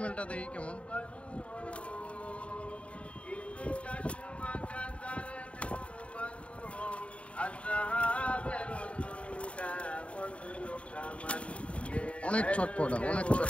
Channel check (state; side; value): late; right; 0.062 ms